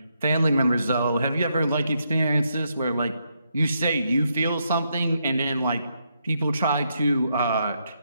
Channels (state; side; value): inverted; both; correlation -0.79